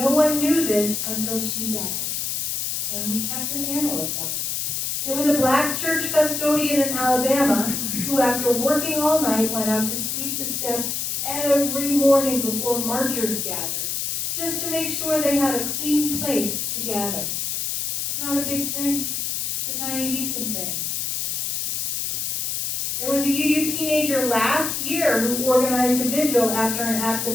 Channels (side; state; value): left; noise; hiss, 1 dB below the sound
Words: one knew this until she died, and we kept an annal of that. There was a black church custodian in Alabama who, after working all night, went out to sweep the steps every morning before marchers gathered, just to make sure they had a clean place to gather. It's not a big thing. It's a tiny, decent thing. There was a UU teenager last year who organized a vigil after an act of